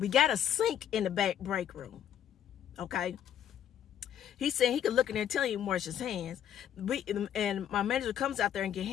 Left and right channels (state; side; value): quieter; right; 10.1 dB